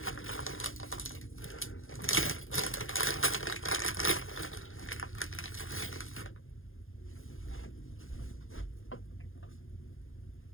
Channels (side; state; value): right; late; 0.60 ms